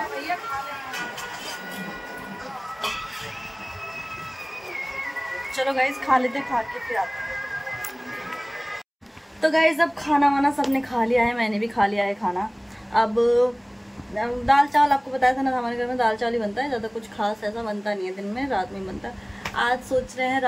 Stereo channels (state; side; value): identical; both; correlation 1.00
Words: चलो गाइस खा लेते, खा के फिर आते हैं। तो गाइस अब खाना वाना सबने खा लिया है, मैंने भी खा लिया है खाना। अब दाल चावल आपको बताया था ना, हमारे घर में दाल चावल ही बनता है, ज़्यादा कुछ खास ऐसा बनता नहीं है दिन में, रात में बनता है। आज सोच रहे हैं